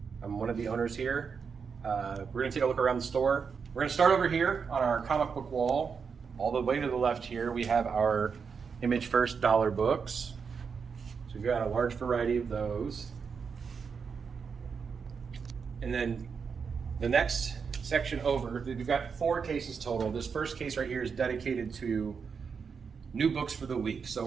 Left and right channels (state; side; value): quieter; left; 5.9 dB